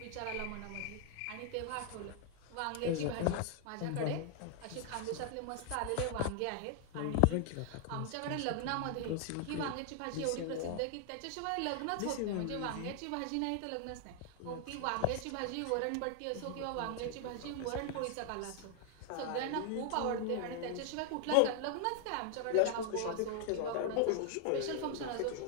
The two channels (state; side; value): different; both; correlation 0.00